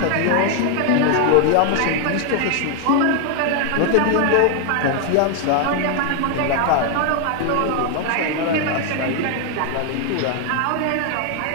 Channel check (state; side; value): different; both; correlation 0.01